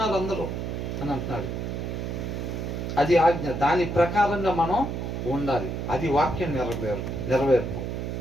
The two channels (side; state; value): right; noise; hum, 4 dB below the sound